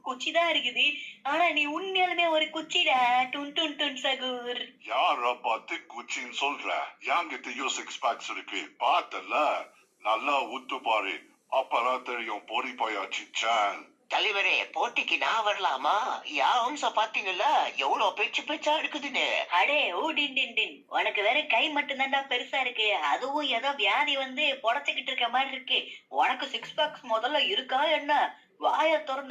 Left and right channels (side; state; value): both; identical; correlation 1.00